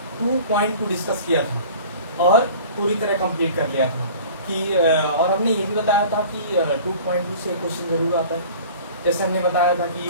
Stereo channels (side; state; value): both; inverted; correlation -0.44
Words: 2.2 डिस्कस किया था और पूरी तरह कंप्लीट कर लिया था कि और हमने ये भी बताया था कि 2.2 से क्वेश्चन जरूर आता है। जैसे हमने बताया था